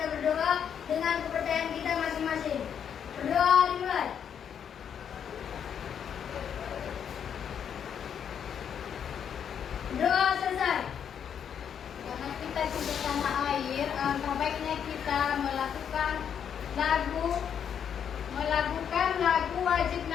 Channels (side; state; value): right; quieter; 8.2 dB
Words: berdoa dengan kepercayaan kita masing-masing. Berdoa dimulai. Doa selesai. Karena kita cinta tanah air, alangkah baiknya kita melakukan lagu wajib